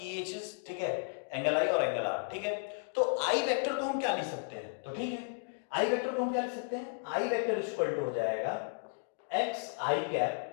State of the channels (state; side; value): silent; right; digital silence